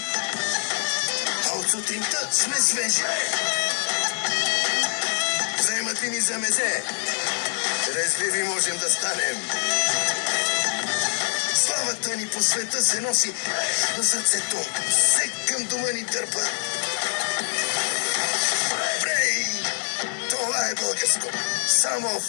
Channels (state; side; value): silent; right; digital silence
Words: а от сутринта сме свежи. Вземат ли ни за мезе? Резливи можем да станем. Славата ни по света се носи на сърцето. Всек към дома ни дърпа. Брей! Това е българско. Само